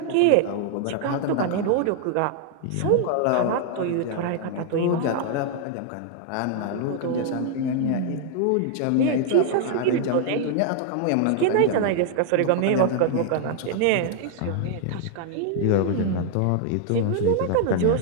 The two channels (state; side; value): different; both; correlation 0.00